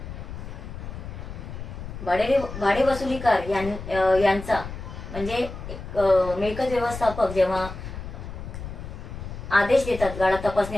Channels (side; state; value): left; noise; rumble, 10 dB below the sound